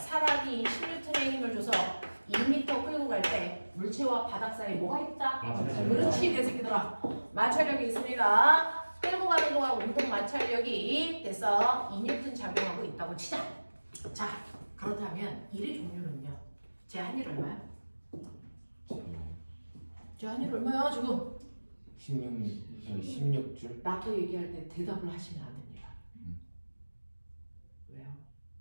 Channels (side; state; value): both; inverted; correlation -1.00